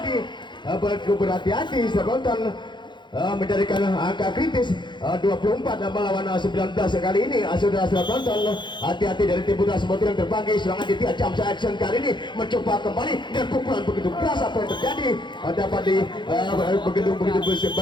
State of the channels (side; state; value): right; late; 0.22 ms